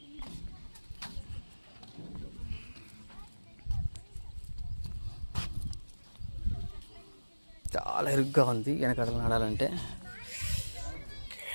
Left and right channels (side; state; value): both; inverted; correlation -1.00